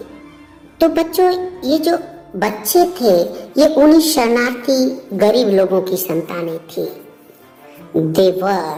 तो बच्चों, ये जो बच्चे थे ये उन्हीं शरणार्थी गरीब लोगों की संतानें थी।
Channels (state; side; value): identical; both; correlation 1.00